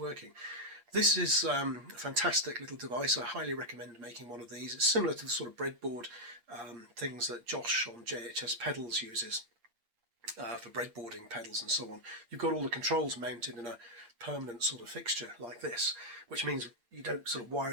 This is a fantastic little device. I highly recommend making one of these. It's similar to the sort of breadboard things that Josh on JHS Pedals uses for breadboarding pedals and so on. You've got all the controls mounted in a permanent sort of fixture like this, which means you don't sort of wire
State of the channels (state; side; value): late; left; 8.6 ms